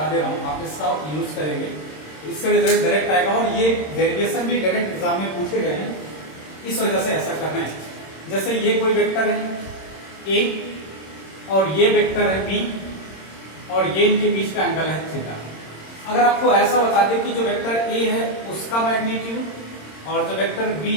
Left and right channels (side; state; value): right; late; 26 ms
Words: दे रहा हूं, आप इसका यूज करेंगे, इससे रिजल्ट डायरेक्ट आएगा। और ये डेरिवेशन भी डायरेक्ट एग्जाम में पूछे गए हैं, इस वजह से ऐसा करना है। जैसे ये कोई वेक्टर है ए और ये वेक्टर है बी और ये इनके बीच का एंगल है थीटा। अगर आपको ऐसा बता दें कि जो वेक्टर ए है उसका मैग्नीट्यूड और जो वेक्टर बी